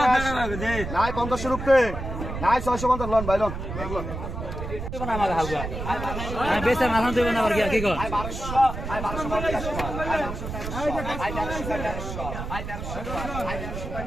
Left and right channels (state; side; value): noise; right; rumble, 6 dB below the sound